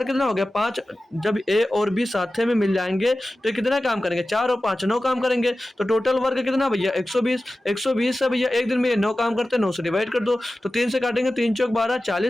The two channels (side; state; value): both; normal; correlation 0.95